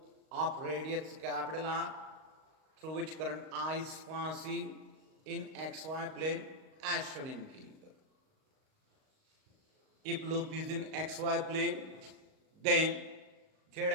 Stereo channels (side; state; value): left; late; 38 ms